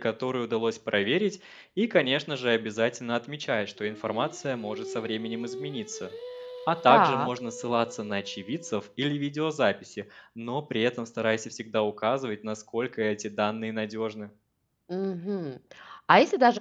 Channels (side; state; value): both; identical; correlation 1.00